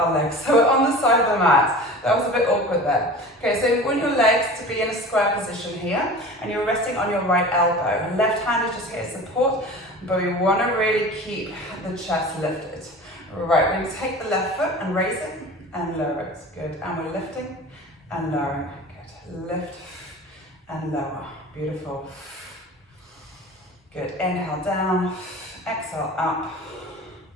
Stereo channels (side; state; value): both; normal; correlation 0.37